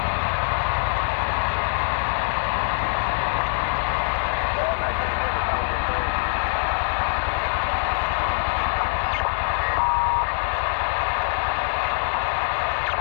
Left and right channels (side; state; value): right; silent; digital silence